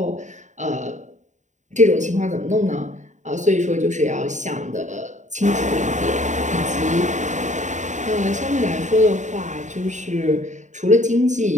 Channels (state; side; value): late; left; 0.35 ms